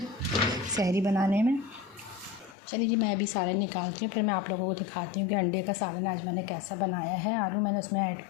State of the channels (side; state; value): right; drops out; at 2.6 s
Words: सहरी बनाने में। चलिए जी, मैं अभी सालन निकालती हूँ, फिर मैं आप लोगों को दिखाती हूँ कि अंडे का सालन आज मैंने कैसा बनाया है। आलू मैंने उसमें ऐड